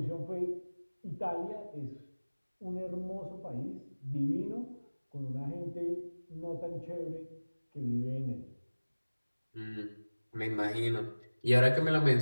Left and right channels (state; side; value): inverted; both; correlation -1.00